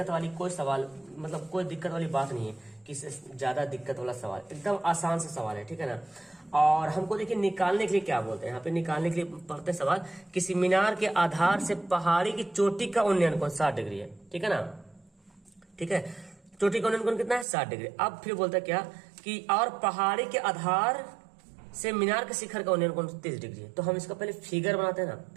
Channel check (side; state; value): left; drops out; at 17.4 s